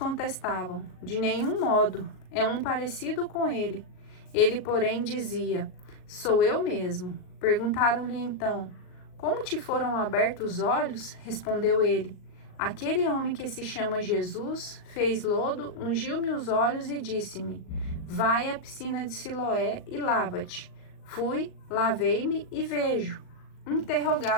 De nenhum modo, é um parecido com ele. Ele, porém, dizia: Sou eu mesmo. Perguntaram-lhe então: Como te foram abertos os olhos? Respondeu ele: Aquele homem que se chama Jesus fez lodo, ungiu-me os olhos e disse-me: Vai à piscina de Siloé e lava-te. Fui, lavei-me e vejo.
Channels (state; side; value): late; right; 38 ms